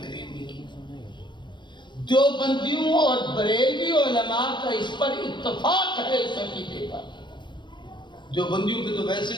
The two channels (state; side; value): late; right; 0.22 ms